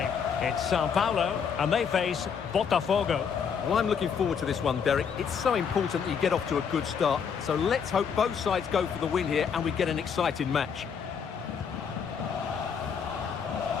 It's Sao Paulo, and they face Botafogo. Well, I'm looking forward to this one, Derek. It's so important that you get off to a good start. So let's hope both sides go for the win here and we get an exciting match.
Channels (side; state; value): right; quieter; 6.8 dB